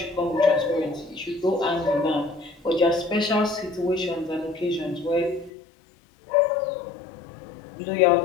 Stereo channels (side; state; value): right; drops out; at 5.5 s